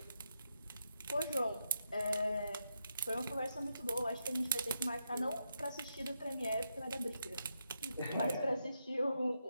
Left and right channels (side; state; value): both; inverted; correlation -0.83